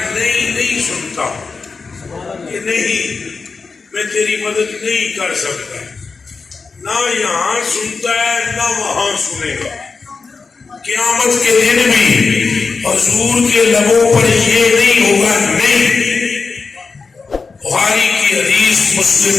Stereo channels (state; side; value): quieter; right; 4.6 dB